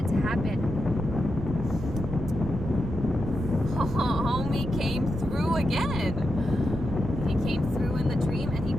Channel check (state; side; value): noise; right; rumble, 9 dB below the sound